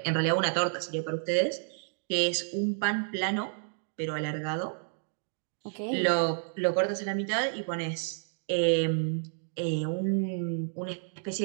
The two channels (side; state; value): left; silent; digital silence